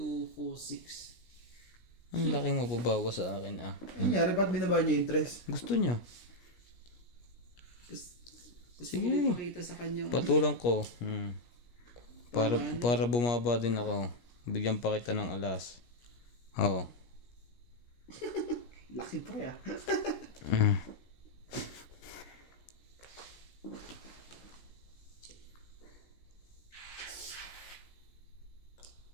4, 6. Ang laki mo babawa sa akin ah. Ano nangyari? Ba't binaba niya yung interest? Gusto niya. Gusto ko Sige. ipakita sa kanya. Patulang ko. Para bumaba din ako. Bigyan pa kita ng alas. Oo. Laki pre ah.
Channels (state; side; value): late; right; 17 ms